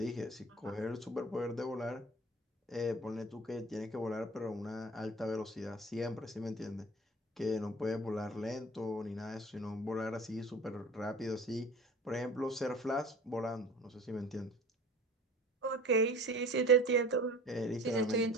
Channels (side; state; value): both; normal; correlation 0.42